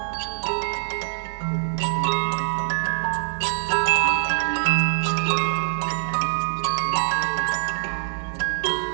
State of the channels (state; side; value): silent; left; 62 dB below the other